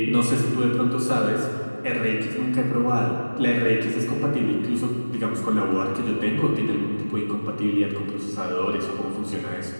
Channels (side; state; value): both; inverted; correlation -1.00